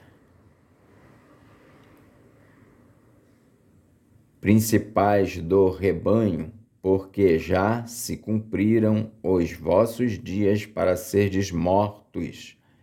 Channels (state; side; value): identical; both; correlation 1.00